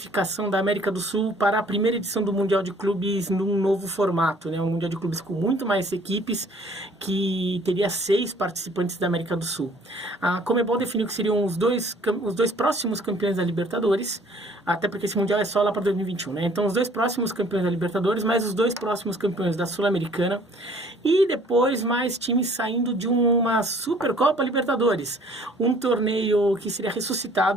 da América do Sul para a primeira edição do Mundial de Clubes num novo formato, né? Um Mundial de Clubes com muito mais equipes, que teria 6 participantes da América do Sul. A Conmebol definiu que seriam os dois próximos campeões da Libertadores, até porque esse Mundial é só lá para 2021, né? Então, os 2 próximos campeões da Libertadores, mais os 2 próximos campeões da Sul-Americana, e depois mais times saindo de uma Supercopa Libertadores, um torneio que seria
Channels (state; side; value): normal; both; correlation 0.56